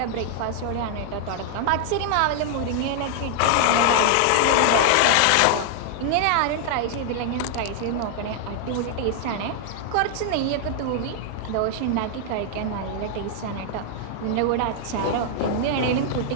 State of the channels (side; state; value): both; different; correlation 0.00